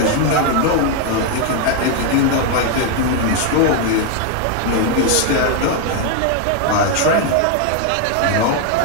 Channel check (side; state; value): both; different; correlation 0.00